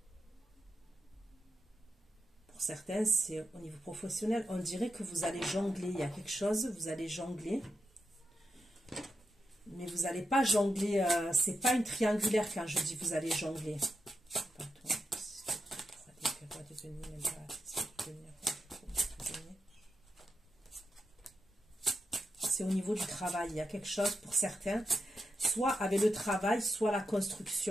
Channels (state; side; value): normal; both; correlation 0.87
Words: Pour certains, c'est au niveau professionnel, on dirait que vous allez jongler, il y a quelque chose, vous allez jongler. Mais vous n'allez pas jongler, c'est pas une triangulaire quand je dis vous allez jongler. C'est au niveau du travail, il y a quelque chose pour certains, soit avec le travail, soit la